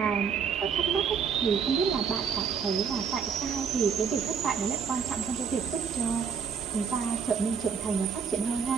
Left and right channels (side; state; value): left; quieter; 6.5 dB